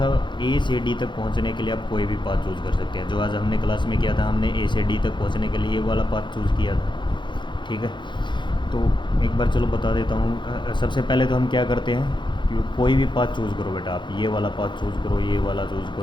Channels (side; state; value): right; late; 0.23 ms